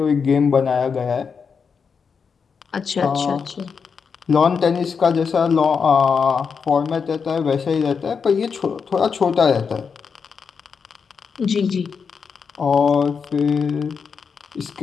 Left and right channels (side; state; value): right; quieter; 5.9 dB